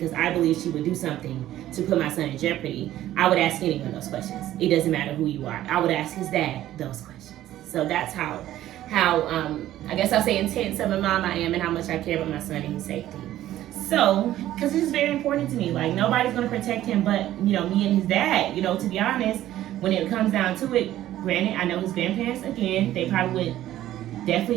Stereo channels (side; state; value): left; quieter; 13.5 dB